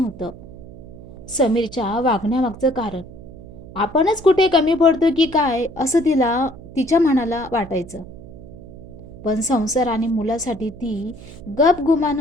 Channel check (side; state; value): right; noise; hum, 17 dB below the sound